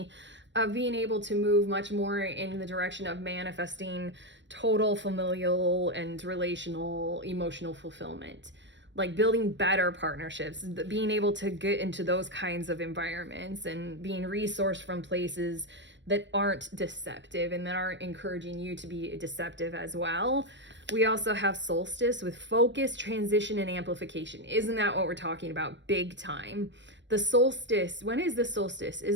Of being able to move much more in the direction of manifesting total familial and relational emotional fulfillment, like building better partnerships, being able to get into those kinds of environments and being resourced from places that aren't deceptive and that aren't encouraging you to be deceptive as well. We also have solstice with focus, transition, and amplification. Isn't that what we're talking about? Big time. The solstice, when is the solstice?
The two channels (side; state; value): left; late; 0.53 ms